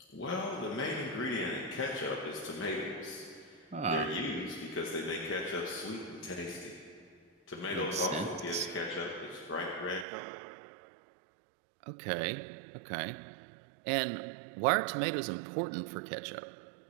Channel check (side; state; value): left; drops out; at 10.1 s